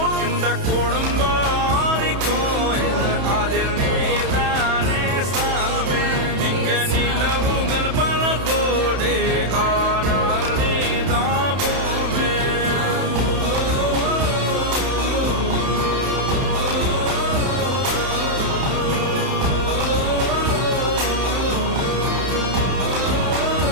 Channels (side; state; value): left; late; 31 ms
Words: இந்த குடும்பாரி கோயில் அதில் நீதானே சாமி இங்க நிலவுகள் பல கோடி ஆனால் நீதான் பூமி